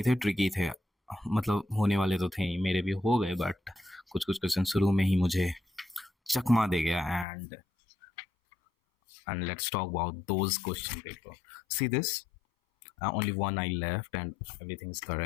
थे, ट्रिकी थे। मतलब होने वाले तो थे ही, मेरे भी हो गए, बट कुछ कुछ क्वेश्चन शुरू में ही मुझे चकमा दे गया। And let's talk about those question paper. See this, only one I left and everything's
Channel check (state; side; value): drops out; right; at 7.2 s